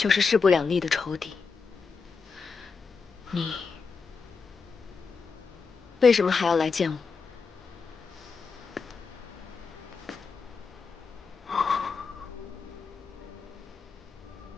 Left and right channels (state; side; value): quieter; right; 5.0 dB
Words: 是势不两立的仇敌。你为什么还要来见我？